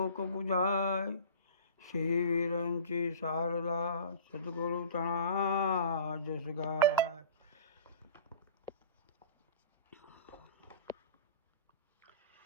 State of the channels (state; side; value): inverted; both; correlation -0.40